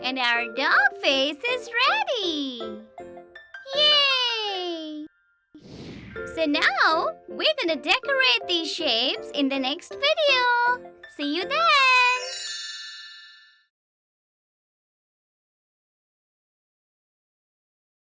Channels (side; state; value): both; identical; correlation 1.00